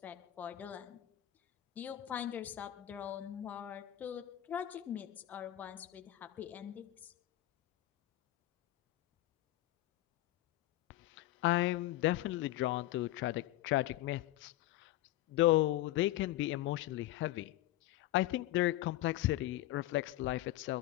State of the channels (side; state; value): right; quieter; 15.2 dB